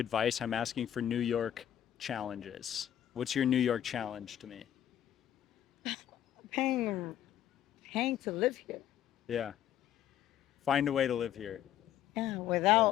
I'm asking for New York challenges. What's your New York challenge to me? Paying, paying to live here. Yeah. Find a way to live here. Yeah,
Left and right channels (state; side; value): quieter; right; 11.0 dB